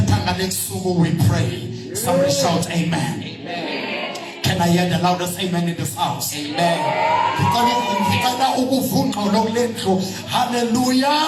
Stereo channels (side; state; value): both; identical; correlation 1.00